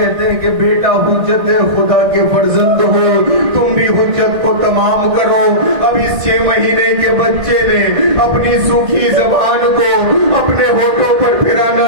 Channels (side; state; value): left; late; 1.6 ms